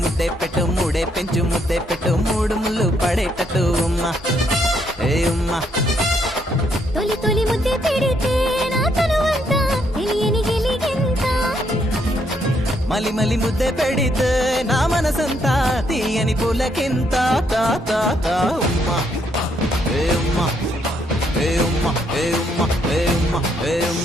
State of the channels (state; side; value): normal; both; correlation 0.73